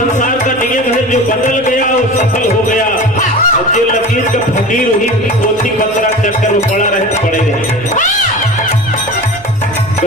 का नियम है, जो बदल गया वो सफल हो गया और जो लकीर का फकीर हुई पोथी पत्रा चक्कर वो पड़ा रहे तो पड़े रहे।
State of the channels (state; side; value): noise; left; hum, 24 dB below the sound